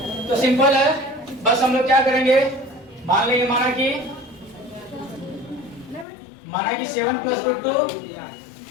तो सिंपल है, बस हम लोग क्या करेंगे, मान लेंगे माना कि 7 प्लस रूट 2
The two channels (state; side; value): drops out; right; at 6.1 s